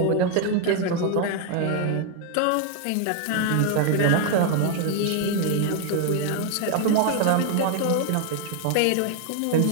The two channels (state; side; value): different; both; correlation 0.01